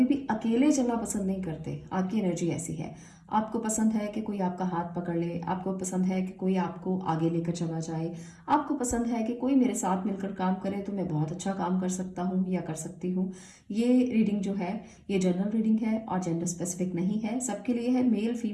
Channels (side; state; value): both; identical; correlation 1.00